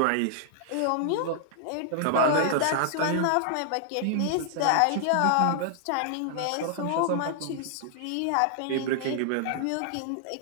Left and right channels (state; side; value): different; both; correlation -0.01